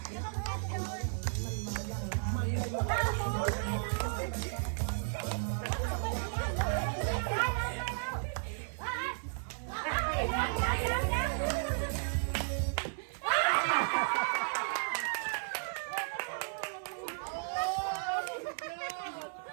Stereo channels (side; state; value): left; silent; digital silence